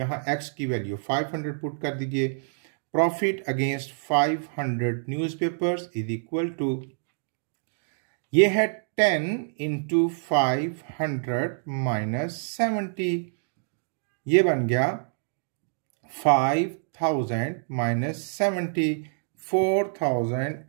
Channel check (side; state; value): left; silent; digital silence